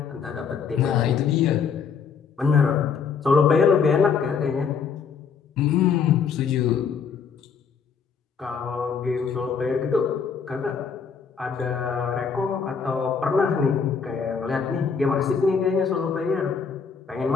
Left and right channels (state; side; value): quieter; right; 6.1 dB